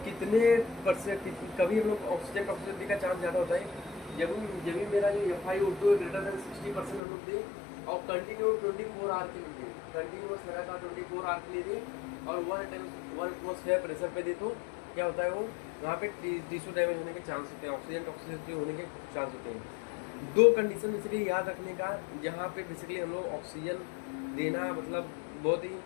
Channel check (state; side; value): drops out; right; at 7.0 s